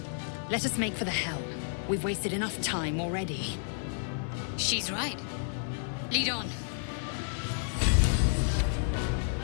Let us make for the helm. We've wasted enough time already. She's right. Lead on.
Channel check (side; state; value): right; silent; 57 dB below the other